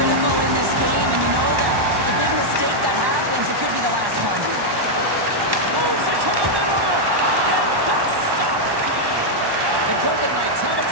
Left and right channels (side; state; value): left; late; 1.1 ms